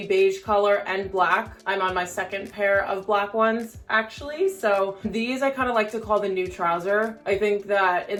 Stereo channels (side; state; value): both; identical; correlation 1.00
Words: beige color and black. I'm on my second pair of black ones actually. So these I kind of like to call the new trouser. I think that in